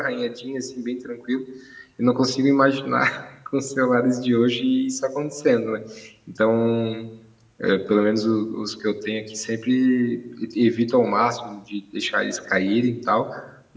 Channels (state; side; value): identical; both; correlation 1.00